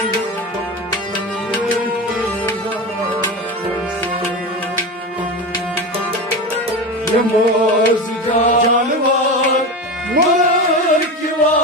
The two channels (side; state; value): both; normal; correlation 0.23